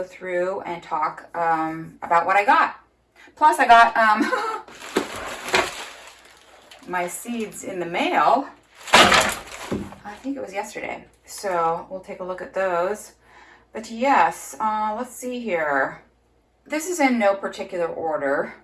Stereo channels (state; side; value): identical; both; correlation 1.00